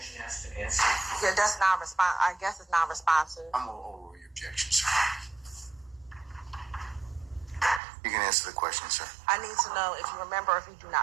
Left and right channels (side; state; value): left; drops out; at 7.8 s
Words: has to answer. Yeah, that's non-responsive. I guess it's non-responsive. I'm going to overrule your objection, sir. You can answer the question, sir. I need to know if you remember or if you do